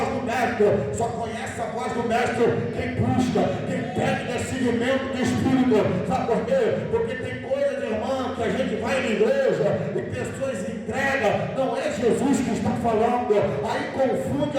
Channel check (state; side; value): identical; both; correlation 1.00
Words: do mestre. Só conhece a voz do mestre quem busca, quem pede seguimento do Espírito. Sabe por quê? Porque tem coisas, irmão, que a gente vai na igreja e pessoas entregam, não é Jesus que está falando, aí confunde